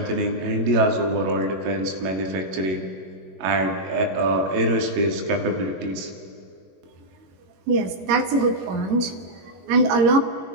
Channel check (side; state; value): left; late; 21 ms